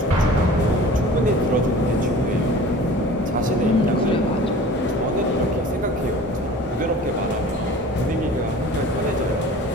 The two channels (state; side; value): normal; both; correlation 0.43